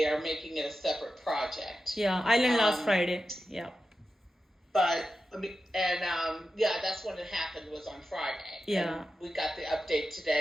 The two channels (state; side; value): normal; both; correlation 0.91